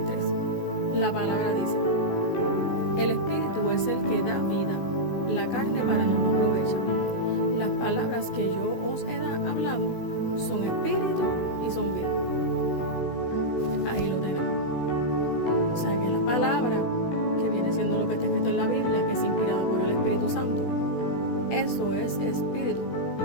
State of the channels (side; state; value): right; late; 16 ms